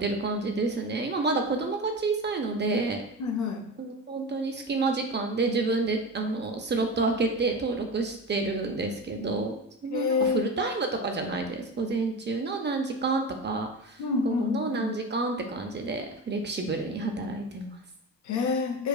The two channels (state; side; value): normal; both; correlation 0.26